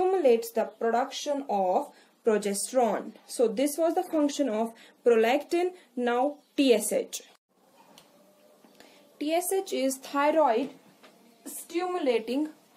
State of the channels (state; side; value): identical; both; correlation 1.00